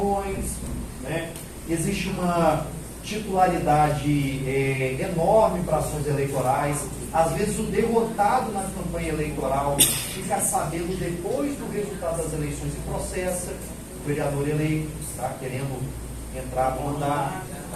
né? Existe uma titularidade enorme para ações eleitorais. Às vezes o derrotado na campanha eleitoral fica sabendo depois do resultado das eleições e processa o vereador eleito, tá? Querendo entrar no mandato.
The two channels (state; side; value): identical; both; correlation 1.00